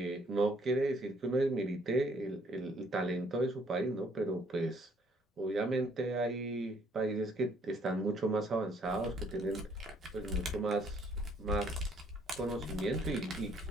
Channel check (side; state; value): both; normal; correlation 0.65